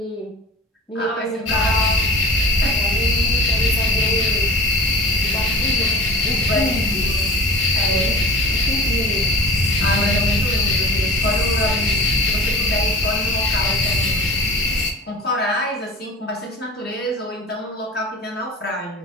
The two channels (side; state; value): both; normal; correlation 0.38